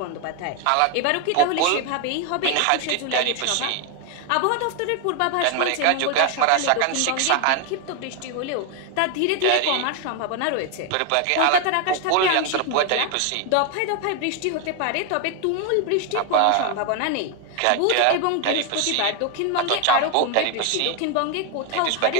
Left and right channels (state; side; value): different; both; correlation 0.01